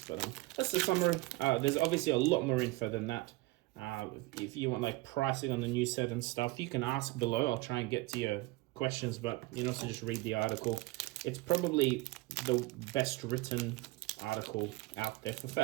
But that's the summary. There's obviously a lot more info than that. If you want like pricing on the new set and stuff, you can ask below. I'll try and get to your questions, but you can also just read the article. It's probably the best written article out there for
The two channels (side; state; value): left; quieter; 21.1 dB